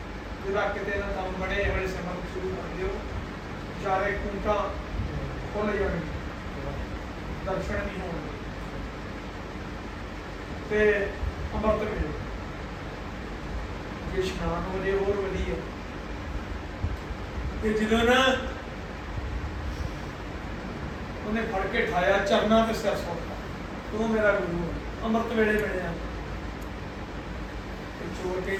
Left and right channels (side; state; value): both; identical; correlation 1.00